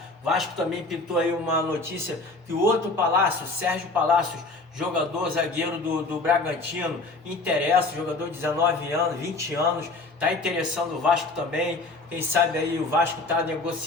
Vasco também pintou aí uma notícia que o outro Palácio, Sérgio Palácios, jogador zagueiro do Bragantino, interessa, jogador de 19 anos, 20 anos, está interessando o Vasco também. Quem sabe aí o Vasco está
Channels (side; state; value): right; quieter; 3.3 dB